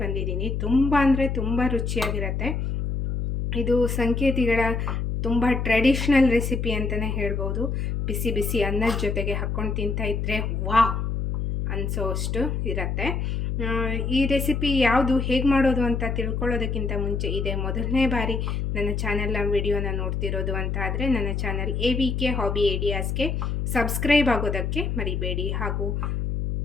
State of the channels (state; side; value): noise; left; hum, 1 dB below the sound